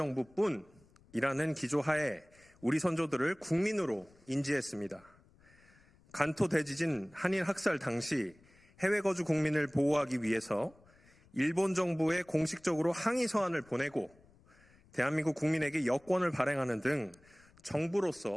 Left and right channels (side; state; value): left; noise; rumble, 28 dB below the sound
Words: 기조하에 우리 선조들을 국민으로 인지했습니다. 간토 대지진 한일 학살 당시 해외 거주 국민을 보호하기 위해서 일본 정부에 공식적으로 항의 서한을 보내고 대한민국 국민에게 여권을 발행하는 등